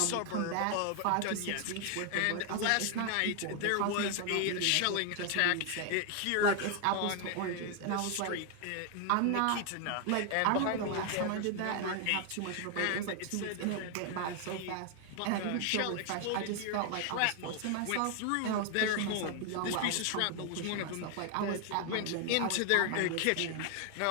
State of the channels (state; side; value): different; both; correlation 0.00